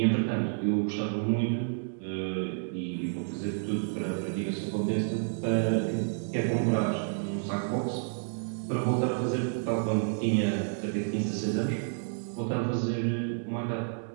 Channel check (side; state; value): left; silent; digital silence